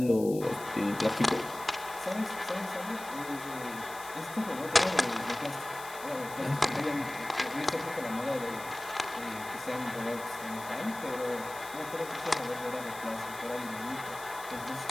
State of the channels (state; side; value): noise; left; hiss, 15 dB below the sound